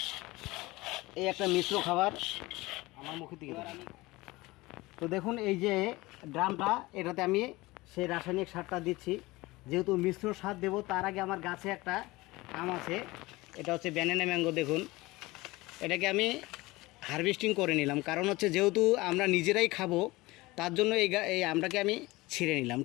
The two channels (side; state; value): right; quieter; 20.8 dB